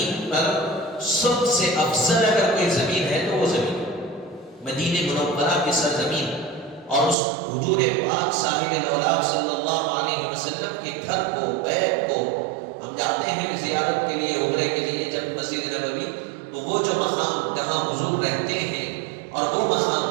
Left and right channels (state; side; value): drops out; left; at 7.2 s